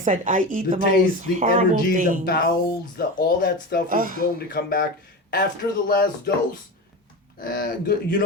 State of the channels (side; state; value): both; normal; correlation 0.25